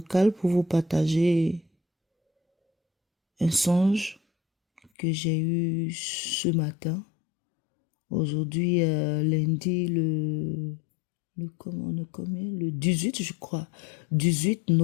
pour vous partager un songe que j'ai eu ce matin. Aujourd'hui, lundi, le 18, je crois, 18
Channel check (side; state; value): right; drops out; at 4.9 s